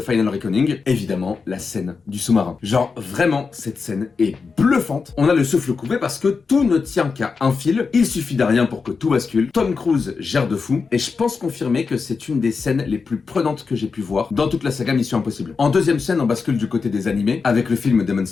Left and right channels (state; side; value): quieter; right; 4.9 dB